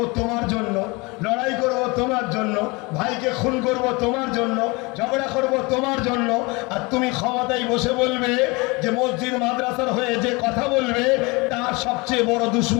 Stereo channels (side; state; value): right; quieter; 26.1 dB